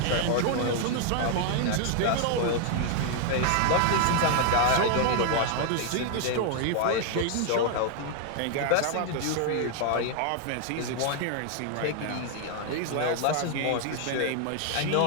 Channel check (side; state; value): both; different; correlation 0.00